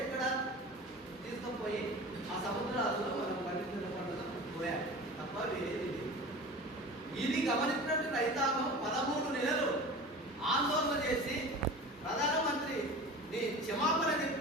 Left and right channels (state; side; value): normal; both; correlation 0.36